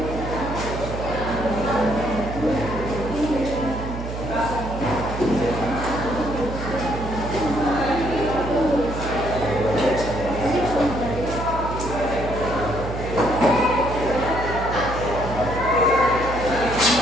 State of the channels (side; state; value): right; noise; hum, 7 dB below the sound